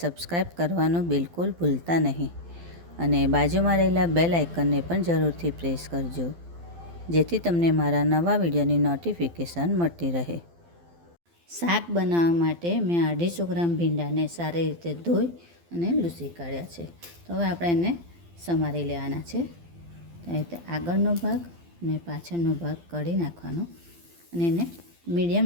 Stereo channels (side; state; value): left; late; 12 ms